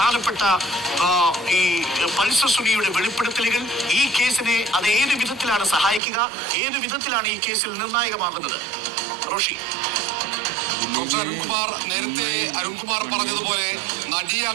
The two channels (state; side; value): drops out; left; at 6.0 s